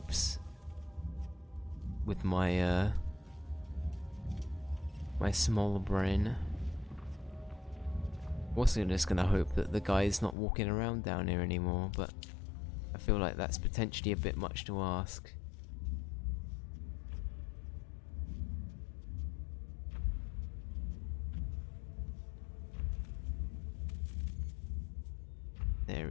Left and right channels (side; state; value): right; drops out; at 10.4 s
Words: with my my small brain. Also just gonna hope that the guy's not walking around down here anymore, but I feel like that's potentially a bit much to ask. There